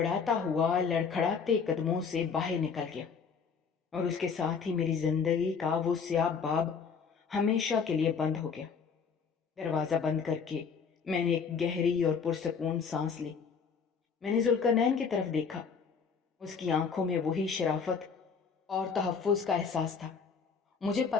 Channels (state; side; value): quieter; right; 5.9 dB